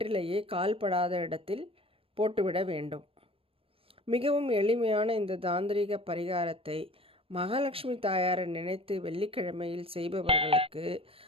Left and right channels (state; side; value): late; left; 0.27 ms